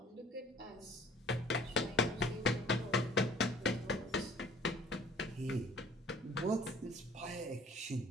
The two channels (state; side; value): normal; both; correlation 0.53